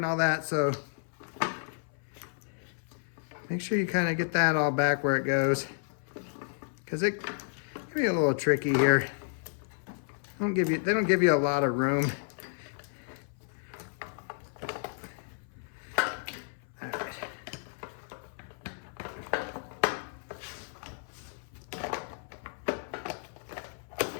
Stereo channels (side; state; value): right; silent; 56 dB below the other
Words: all that. So make sure you kind of get that all back where it goes, because it can be a little tricky here. They don't give you a lot of room.